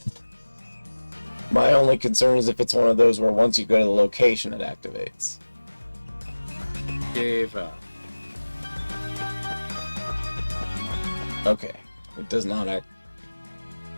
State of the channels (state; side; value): inverted; both; correlation -1.00